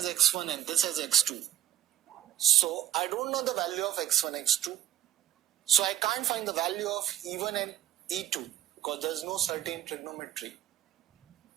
x1 and this as x2. So I don't know the value of x1, x2. So I can't find the value of E1 and E2 because there is no certain trigonometry.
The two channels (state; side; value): quieter; left; 12.3 dB